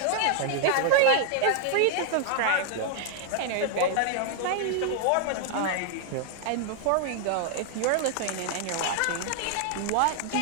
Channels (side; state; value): both; different; correlation 0.00